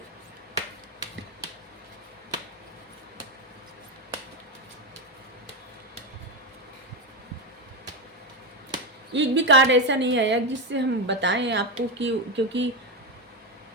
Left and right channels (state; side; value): normal; both; correlation 0.11